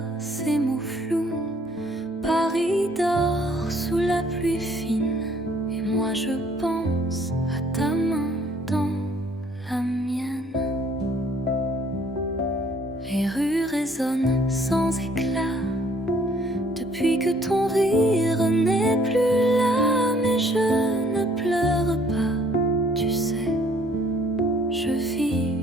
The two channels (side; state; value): both; normal; correlation 0.61